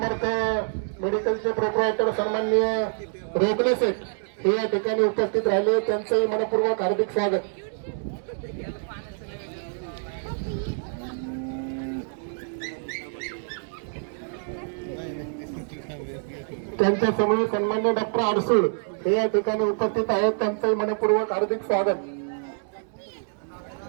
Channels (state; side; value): silent; left; digital silence